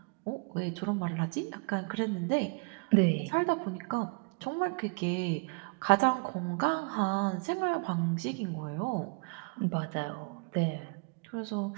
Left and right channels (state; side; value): quieter; left; 31.2 dB